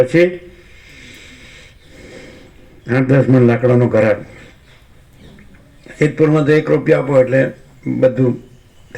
8-10 મણ લાકડાનો ઘરાક. સિદ્ધપુરમાં તો 1 રૂપિયા આપો એટલે બધું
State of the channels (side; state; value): both; identical; correlation 1.00